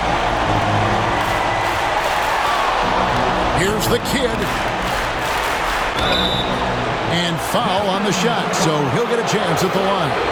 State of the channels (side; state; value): both; identical; correlation 1.00